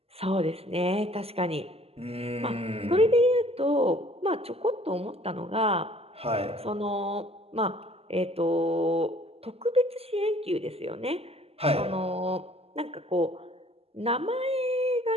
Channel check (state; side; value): late; left; 0.29 ms